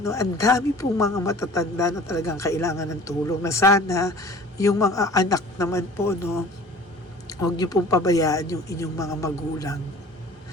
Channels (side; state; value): both; normal; correlation 0.46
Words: no? Ang dami pong mga matatanda na talagang kailangan ng tulong. Na sana, yung mga anak naman po, no? Huwag nyo pong pabayaan yung inyong mga magulang.